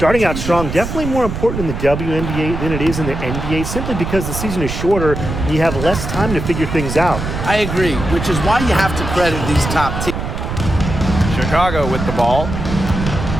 out strong, definitely more important in the WNBA than it is in the NBA, simply because the season is shorter and you have less time to figure things out. I agree, which is why you have to credit these top teams. Chicago with the ball.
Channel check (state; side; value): noise; right; rumble, 5 dB below the sound